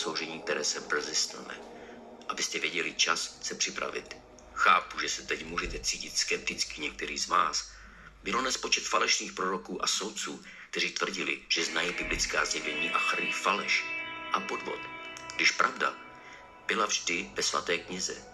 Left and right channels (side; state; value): both; identical; correlation 1.00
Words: které se brzy stane. Abyste věděli čas se připravit. Chápu, že se teď můžete cítit skepticky některý z vás. Bylo nespočet falešných proroků a soudců, kteří tvrdili, že znají biblická zjevení a chrlí faleš a podvod. Když pravda byla vždy ve svaté knize,